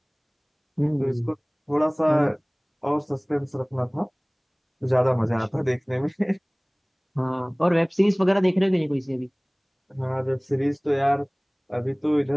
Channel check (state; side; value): identical; both; correlation 1.00